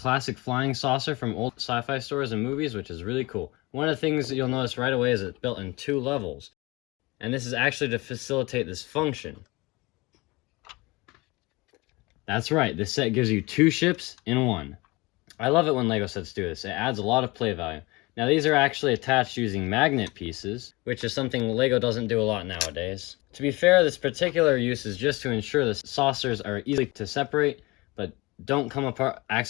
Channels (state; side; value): quieter; right; 23.5 dB